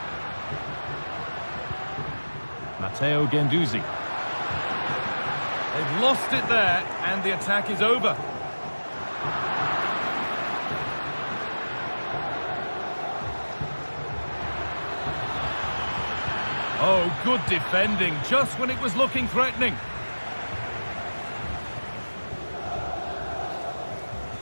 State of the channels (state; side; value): inverted; both; correlation -1.00